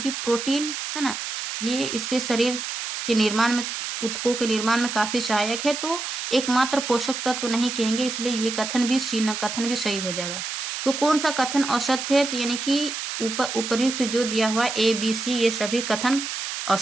प्रोटीन है ना, ये इसके शरीर के निर्माण में, ऊतकों के निर्माण में काफी सहायक है, तो एकमात्र पोषक तत्व नहीं कहेंगे, इसलिए ये कथन भी सी न कथन भी सही हो जाएगा। तो कौन सा कथन असत्य है, तो यानी कि उपर्युक्त जो दिया हुआ ए बी सी ये सभी कथन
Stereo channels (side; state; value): right; noise; hiss, 5 dB below the sound